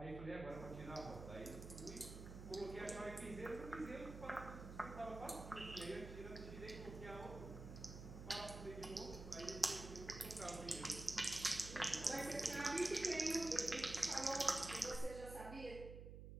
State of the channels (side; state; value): right; noise; hum, 10 dB below the sound